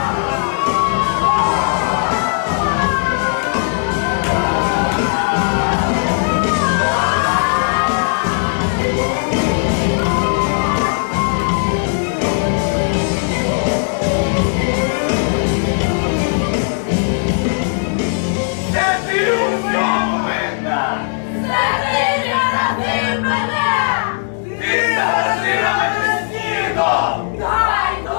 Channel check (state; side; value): silent; right; digital silence